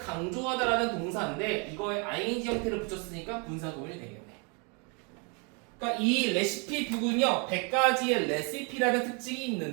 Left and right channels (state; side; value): quieter; left; 34.1 dB